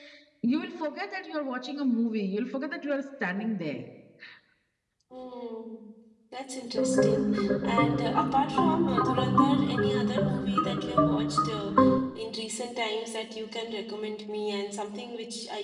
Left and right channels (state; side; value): identical; both; correlation 1.00